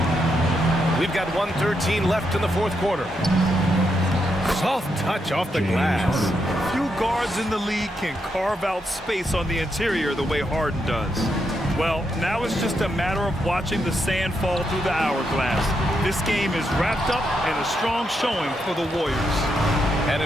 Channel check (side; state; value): both; normal; correlation 0.81